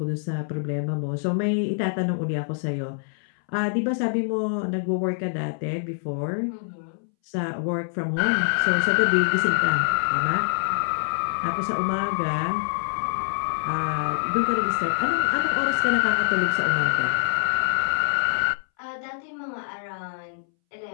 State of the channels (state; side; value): silent; right; 62 dB below the other